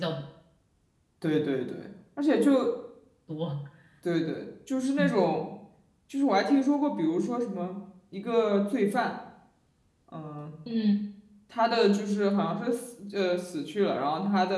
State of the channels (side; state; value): both; identical; correlation 1.00